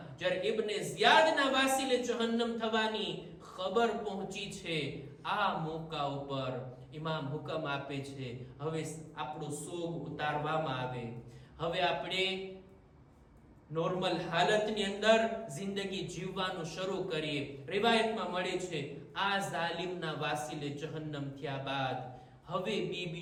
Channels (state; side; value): identical; both; correlation 1.00